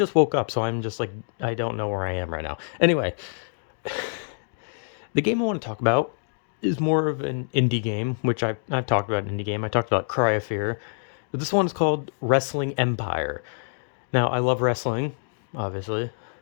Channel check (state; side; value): silent; right; digital silence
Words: woke up, so I'm just like I don't know where I am right now. Anyway, the game I want to talk about is more of an indie game, which I've talked about an indie game. I talked about Cry of Fear, but this one is called Wrestling Empire. Now, I love wrestling, obviously.